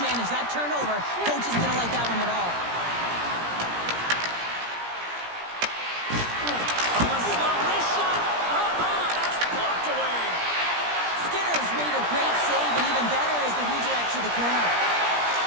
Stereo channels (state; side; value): late; left; 17 ms